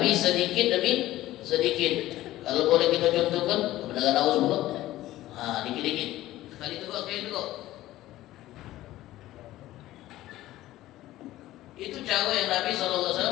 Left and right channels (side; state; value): right; quieter; 15.5 dB